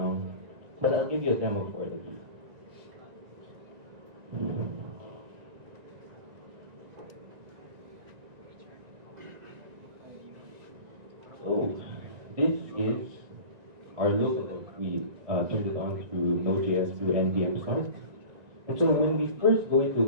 but I'll give you a demo for it. So this is our local. We turned it on through Node.js through NPM start. And so when we first go into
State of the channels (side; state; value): left; late; 1.9 ms